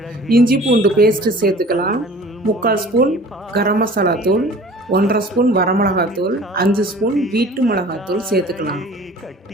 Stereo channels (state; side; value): normal; both; correlation 0.46